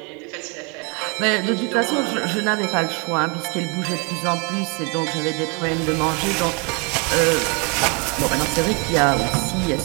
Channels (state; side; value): quieter; left; 32.5 dB